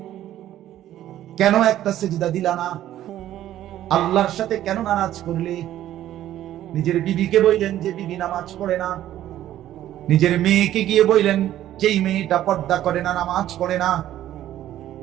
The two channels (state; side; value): quieter; left; 12.7 dB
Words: কেন একটা সেজদা দিলা না? আল্লাহর সাথে কেন নারাজ করলে? নিজের বিবিকে বললেন যে বিবি নামাজ পড়ে না, নিজের মেয়েকে গিয়ে বললেন যেই মেয়েটা পর্দা করে না, নামাজ পড়ে না,